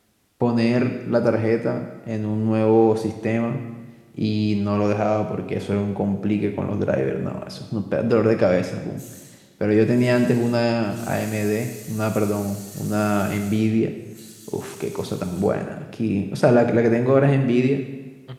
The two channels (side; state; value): both; identical; correlation 1.00